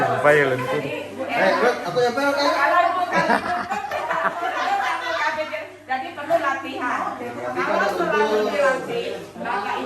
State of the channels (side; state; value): both; identical; correlation 1.00